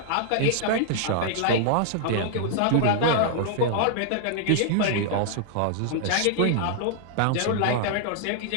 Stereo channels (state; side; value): different; both; correlation -0.01